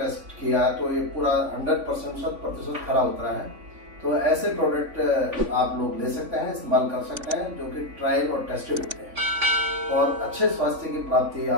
टेस्ट किया, तो ये पूरा 100% खरा उतरा है। तो ऐसे प्रोडक्ट आप लोग ले सकते हैं, इस्तेमाल कर सकते हैं, जो कि ट्रायल और टेस्टेड होते हैं, और अच्छे स्वास्थ्य की प्राप्ति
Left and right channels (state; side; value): late; left; 3.5 ms